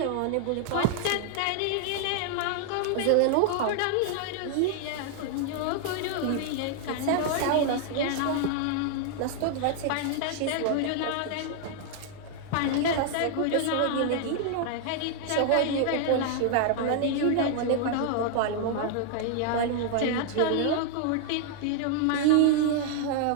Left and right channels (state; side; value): different; both; correlation 0.00